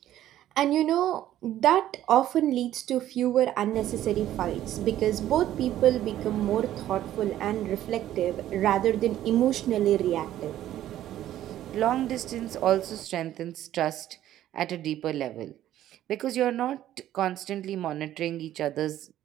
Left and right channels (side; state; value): left; quieter; 12.7 dB